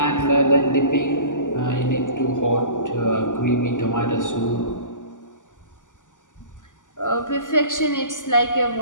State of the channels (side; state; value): right; late; 0.87 ms